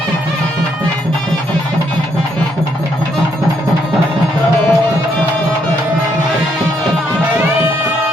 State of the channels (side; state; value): both; normal; correlation 0.74